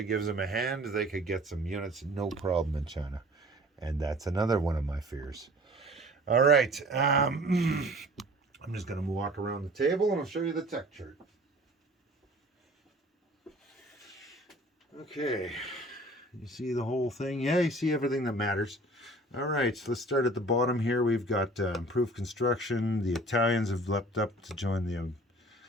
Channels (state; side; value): normal; both; correlation 0.48